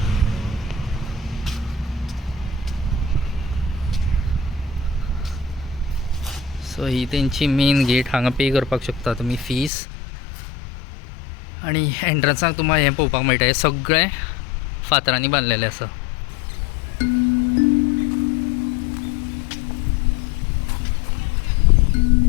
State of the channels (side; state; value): right; drops out; at 9.7 s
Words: So ही तेंची मेन गेट. हांगा पे करपाक शकता तुमी फीस आणि एंट्रन्साक तुमकां हें पळोवपाक मेळटा. हें सगळें फातरांनी बांदलेलें आसा.